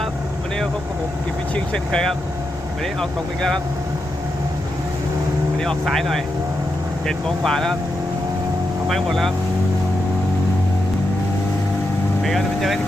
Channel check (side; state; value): left; noise; rumble, 17 dB below the sound